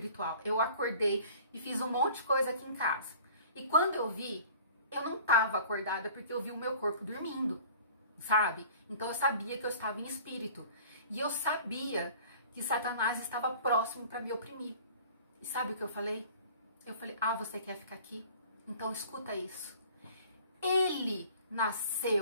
eu acordei e fiz um monte de coisa aqui em casa. E quando eu vi, eu não estava acordada porque eu vi o meu corpo dormindo, sabe? Então eu sabia que eu estava em espírito. E eu sabia que Satanás estava próximo para me oprimir. E sabe o que eu falei? Eu falei, você quer ficar aqui? Então escuta isso. Ele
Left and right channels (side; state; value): both; inverted; correlation -0.47